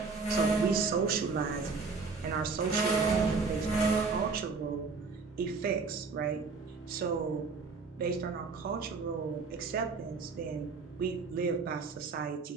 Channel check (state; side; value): quieter; left; 4.5 dB